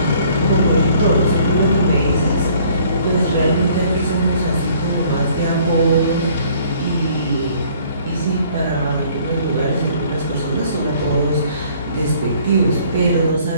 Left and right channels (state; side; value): inverted; both; correlation -0.58